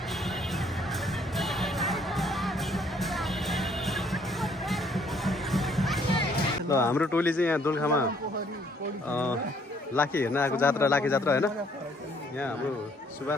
ल हाम्रो टोली चाहिँ यहाँ दोलखामा लाखे हेर्न आएको जात्रा लाखे जात्रा हैन यहाँ हाम्रो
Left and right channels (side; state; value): both; normal; correlation 0.64